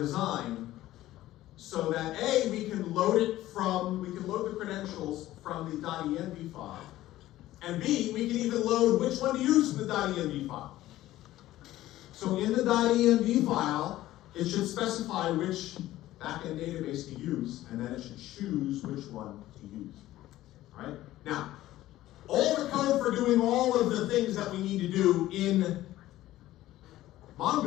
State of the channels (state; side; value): quieter; right; 15.2 dB